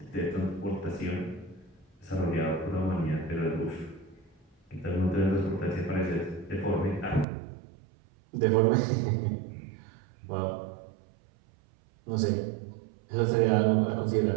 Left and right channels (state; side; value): drops out; left; at 7.2 s